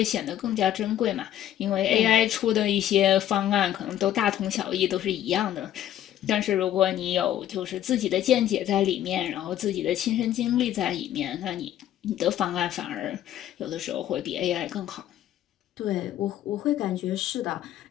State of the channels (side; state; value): right; quieter; 11.9 dB